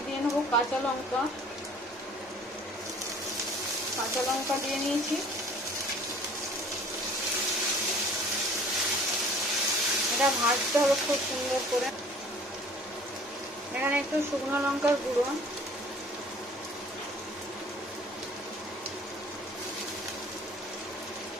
দিয়ে নেবো কাঁচা লঙ্কা, দিয়ে নিয়েছি। এটা ভাজতে হবে খুব সুন্দর করে। এখানে একটু শুকনো লঙ্কার গুঁড়ো,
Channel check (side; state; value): both; normal; correlation 0.51